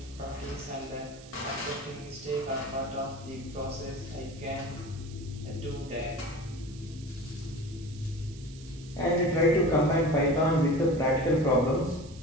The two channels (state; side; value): noise; right; hiss, 21 dB below the sound